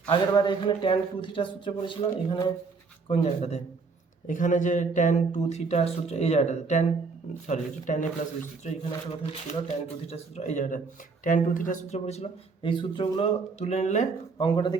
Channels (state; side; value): quieter; left; 4.5 dB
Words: আগের বারে এখানে tan 2 থিটার সূত্র পড়েছিল, এখানে কোন জায়গাটাতে, এখানে যে tan 2 থিটার সূত্র এই জায়গাটাতে tan a প্লাস বি সূত্র, এখানে একটা কথা ছিল tan 2 থিটার সূত্র, এই জায়গাটা tan 2 থিটার সূত্র পড়েছিল, এই সূত্রগুলো তুলে নিলে অঙ্কটাতে